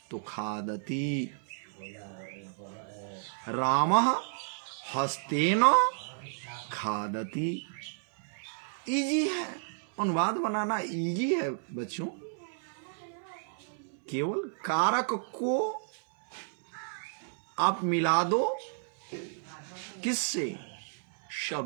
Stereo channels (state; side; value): silent; left; 57 dB below the other